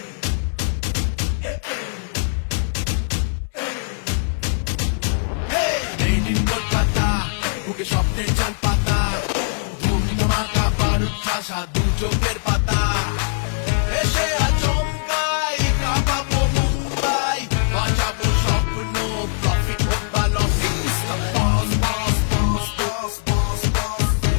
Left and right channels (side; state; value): right; silent; 63 dB below the other